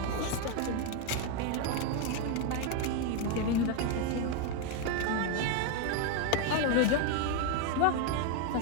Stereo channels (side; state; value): both; different; correlation 0.01